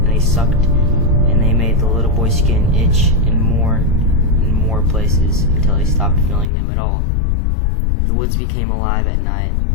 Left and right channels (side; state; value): right; drops out; at 6.5 s